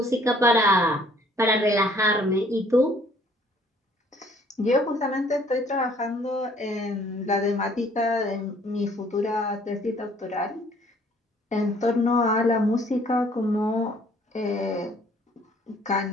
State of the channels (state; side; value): normal; both; correlation 0.59